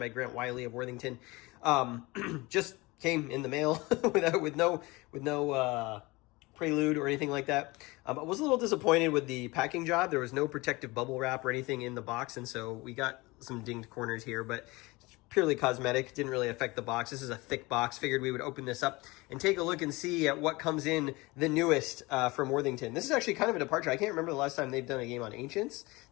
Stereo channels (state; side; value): quieter; right; 23.0 dB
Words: Grant Wiley of Worthington. Just came in the mail with no prelude or anything like that. I was a little disappointed with the packing job. There was no protective bubble wrap or anything in the box, and so we got some dinged corners here, but it's purely cosmetic. Didn't really affect the box. This is a thick box. Figured we would open this up and take a look and see at what comes in the newest from Worthington. This is actually kind of a departure. I can't remember the last time they've done a game on Ancients.